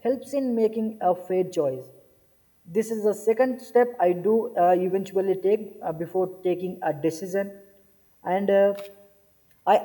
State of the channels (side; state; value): both; identical; correlation 1.00